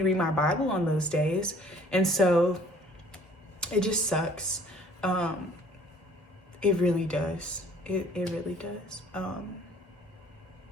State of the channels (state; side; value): normal; both; correlation 0.55